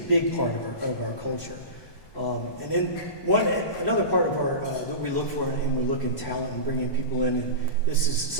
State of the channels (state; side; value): late; right; 1.2 ms